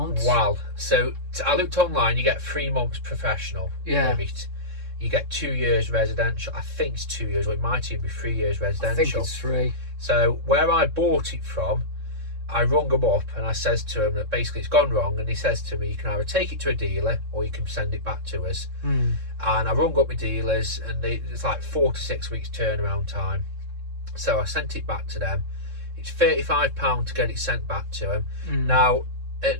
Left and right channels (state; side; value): late; left; 3.7 ms